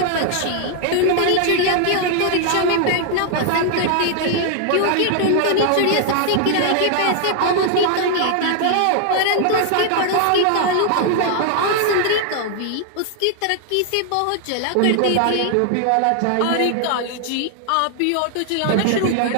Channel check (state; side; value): different; both; correlation 0.00